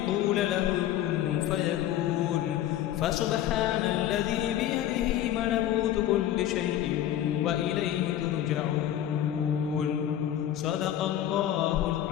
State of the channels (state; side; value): quieter; right; 11.9 dB